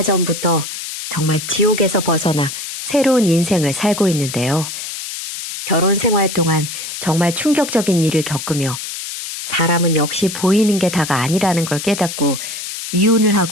전부터 정말 지옥에서 벗어나 새로운 인생을 살고 있는데요. 결혼 생활 동안 정말 충격적인 일을 겪으며 사람은 역시 보이는 게 다가 아니라는 걸 깨닫고 이혼을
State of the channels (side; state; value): left; noise; hiss, 8 dB below the sound